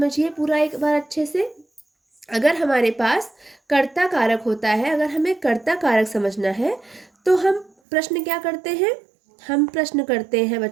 पूरा एक बार अच्छे से। अगर हमारे पास कर्ता कारक होता है, अगर हमें कर्ता कारक समझना है, तो हम प्रश्न क्या करते हैं? हम प्रश्न करते हैं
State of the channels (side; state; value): left; drops out; at 7.7 s